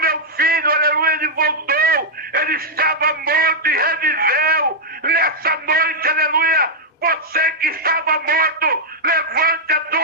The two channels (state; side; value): normal; both; correlation -0.06